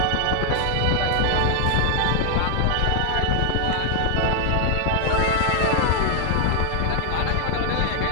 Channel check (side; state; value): both; different; correlation 0.00